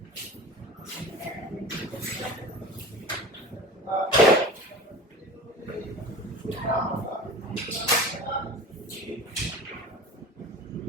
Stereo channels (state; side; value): normal; both; correlation 0.36